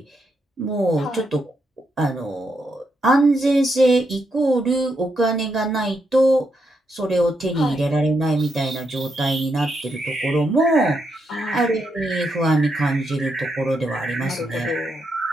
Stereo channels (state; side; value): normal; both; correlation 0.81